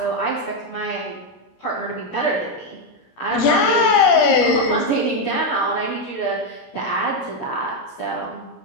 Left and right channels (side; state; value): right; late; 17 ms